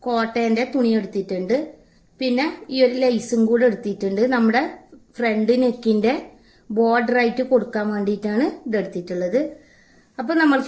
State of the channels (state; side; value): identical; both; correlation 1.00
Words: കോട്ടന്റെ തുണി എടുത്തിട്ടുണ്ട്. പിന്നെ ഈ ഒരു ലേസും കൂടെ എടുത്തിട്ടുണ്ട്. നമ്മുടെ ഫ്രണ്ട് നെക്കിന്റെ ബോർഡർ ആയിട്ട് കൊടുക്കാൻ വേണ്ടിയിട്ടാണ് ഇത് എടുത്തിട്ടുള്ളത്. അപ്പൊ